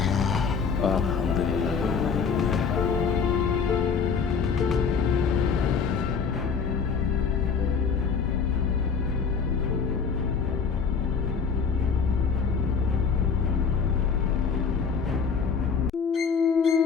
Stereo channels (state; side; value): quieter; right; 5.9 dB